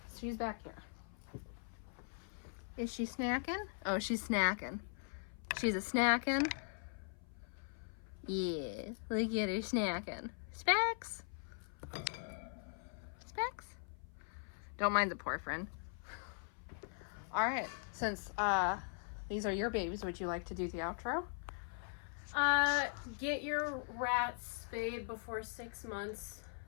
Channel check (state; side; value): silent; right; 51 dB below the other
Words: She's back here. Is she snacking? Oh, she's snacking. She's a snacking. Yeah, look at her snacking. Specs? Specs? Don't mind the poor friend. Alright, since these are your babies, would you like to do the outro? Get your rats spayed before 6 months.